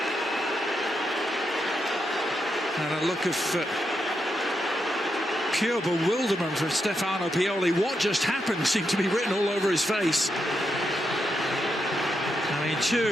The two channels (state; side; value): normal; both; correlation 0.83